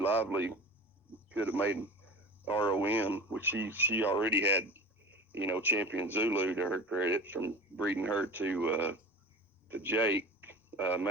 could have made ROM, which she already had, Champion Zulu to her credit from breeding her to Jake,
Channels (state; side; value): normal; both; correlation 0.34